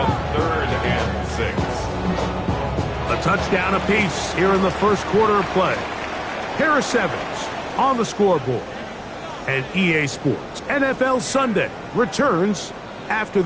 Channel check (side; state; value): both; identical; correlation 1.00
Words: 3rd and 6. A touchdown apiece here in the first quarter of play. Harris Evans on the scoreboard. And EA Sports NFL Sunday returns after